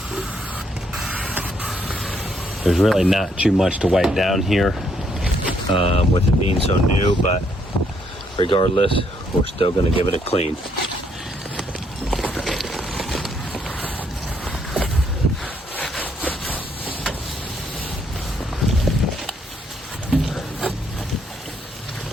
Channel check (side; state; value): both; normal; correlation 0.72